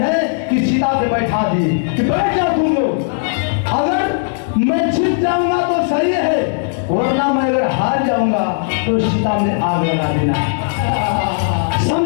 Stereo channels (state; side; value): silent; right; digital silence